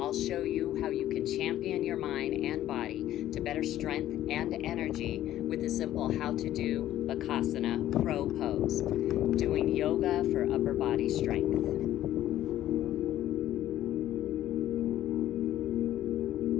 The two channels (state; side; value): quieter; right; 13.0 dB